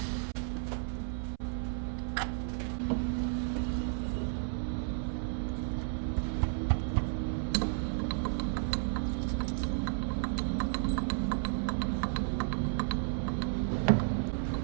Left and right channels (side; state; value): left; silent; 56 dB below the other